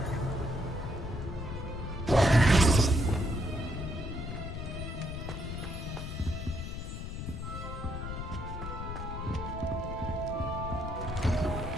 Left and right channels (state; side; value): noise; left; rumble, 6 dB below the sound